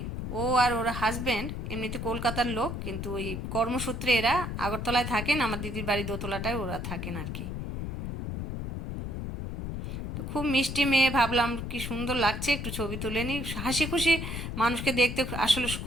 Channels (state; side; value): noise; left; rumble, 5 dB below the sound